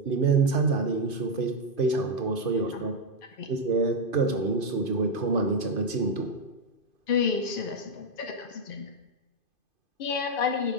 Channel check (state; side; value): late; right; 2.5 ms